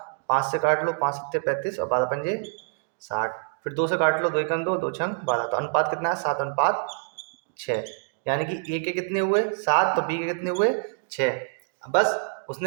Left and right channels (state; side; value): silent; left; digital silence